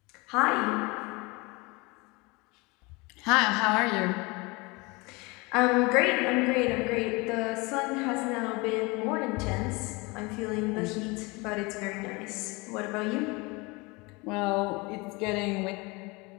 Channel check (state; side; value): quieter; right; 26.0 dB